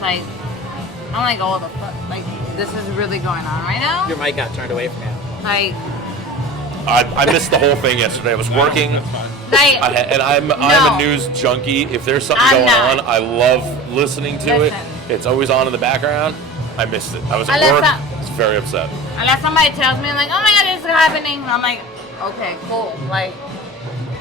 I'm like, oh the fuck, like this is really going on right now. Your mic got turned away from you. Like, I missed the whole thing yesterday. I was working. like. And I'm No. a news junkie. If there's something I'm going not. on, I love listening to Listen. it. It's always on in the background. I missed it. I was at Unless work. I- I was very upset. Unless somebody tells me like, oh my god, this is happening, I'm like, okay, cool. Like,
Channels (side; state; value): both; normal; correlation 0.35